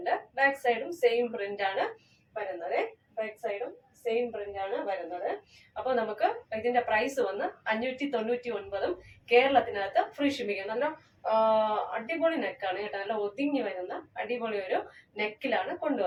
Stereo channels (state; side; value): identical; both; correlation 1.00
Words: ബാക്ക് സൈഡും സെയിം പ്രിന്റ് ആണ് വരുന്നത്. അപ്പൊ നമുക്ക് ഇതിന്റെ പ്രൈസ് വന്ന് 599. കേരളത്തിനകത്ത് ഫ്രീ ഷിപ്പിംഗ്. നല്ല അടിപൊളി നെക്കാണ് കേട്ടോ. നല്ല ഒതുങ്ങി വരുന്ന അടിപൊളി ഒരു നെക്കിലാണ്